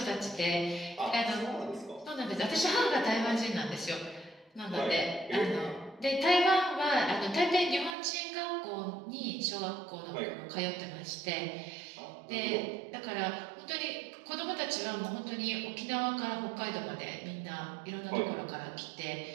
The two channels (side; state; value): left; drops out; at 8.0 s